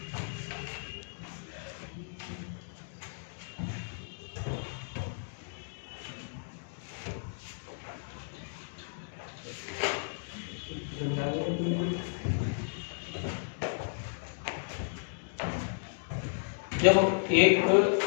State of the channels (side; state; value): right; silent; digital silence